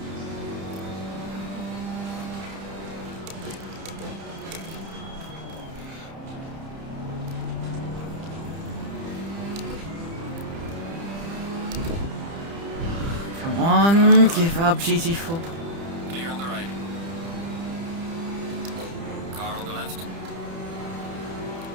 Come on, give up GT4. Clear on the right. Car on the left.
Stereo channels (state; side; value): late; left; 30 ms